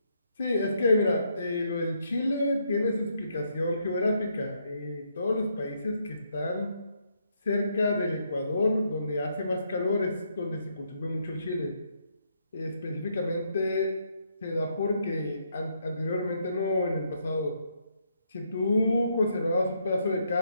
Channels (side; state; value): both; inverted; correlation -0.75